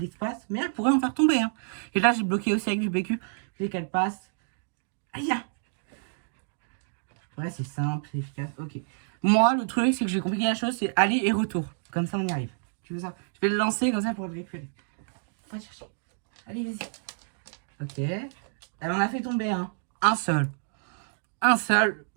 mais elle pourrait en faire tomber. Hein. Et là, j'ai bloqué aussi avec du PQ. Je veux qu'elle passe. Aïe! Ouais, c'est simple, c'est efficace. Ok. Moi, le truc, c'est que j'ai compliqué la chose, c'est aller et retour. Comme ça, on y arrive. Tu veux ça? Je vais le lancer comme ça pour le récupérer. Va chercher. Allez, vas-y. Ok. Elle en a fait tomber un. Un seul. Un seul.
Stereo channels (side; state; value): left; silent; digital silence